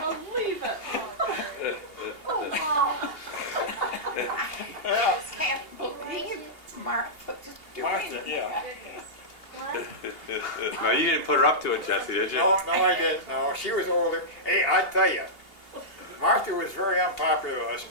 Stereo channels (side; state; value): right; late; 2.8 ms